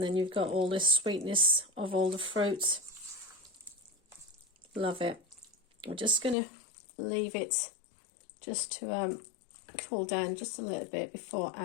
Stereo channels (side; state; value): right; drops out; at 6.4 s